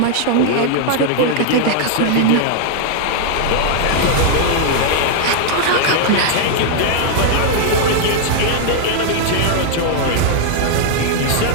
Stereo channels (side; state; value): both; different; correlation 0.00